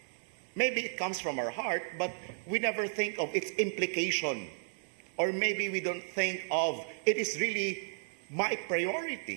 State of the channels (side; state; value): left; silent; digital silence